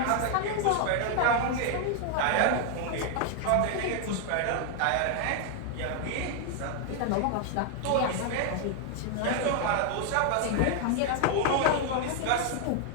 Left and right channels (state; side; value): different; both; correlation 0.00